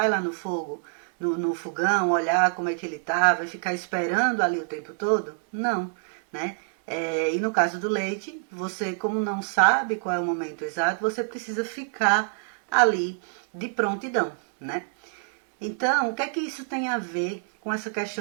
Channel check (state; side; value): silent; left; digital silence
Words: lá no fogo, no fogão, olhar como é que ele tá, vai ficar esperando ali o tempo todo? Não, né? E no caso do leite, você, como não sabe qual é o momento exato, você precisa ficar ali de prontidão, né? Então, o que é que isso tem a ver com essa